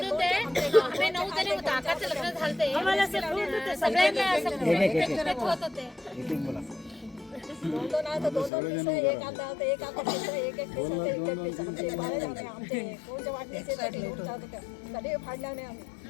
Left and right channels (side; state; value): right; drops out; at 8.5 s